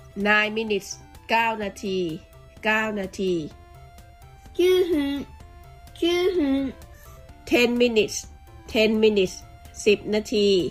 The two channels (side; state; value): both; identical; correlation 1.00